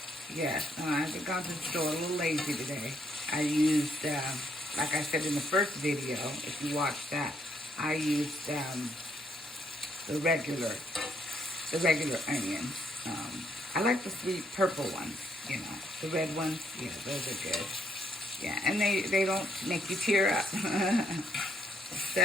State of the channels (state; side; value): normal; both; correlation 0.72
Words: Yes. I've gone to the store a little lazy today. I used, like I said in the first video, if you watched that, I used the regular onions. I like the sweet purple ones, the red ones. Yeah, those are good. Yeah, and they don't make you tear up.